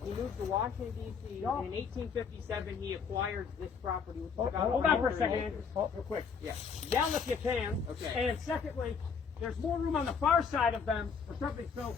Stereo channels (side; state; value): right; quieter; 6.1 dB